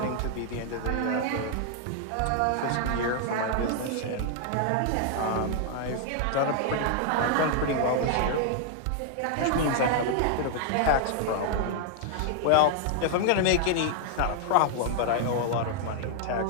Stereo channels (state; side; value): different; both; correlation 0.00